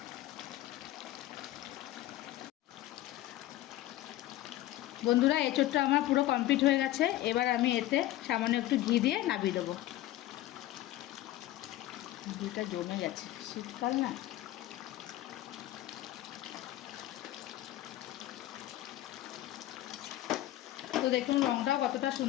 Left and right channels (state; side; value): quieter; right; 15.0 dB